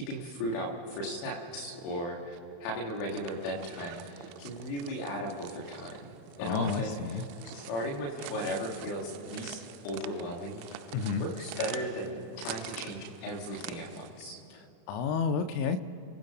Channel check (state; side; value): late; right; 35 ms